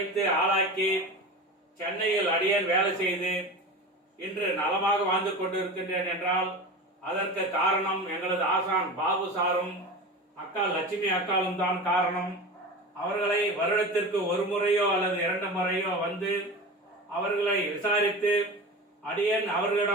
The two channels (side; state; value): both; normal; correlation 0.30